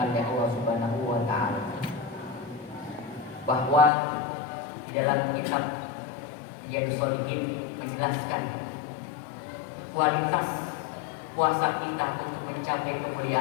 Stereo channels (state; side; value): drops out; right; at 3.9 s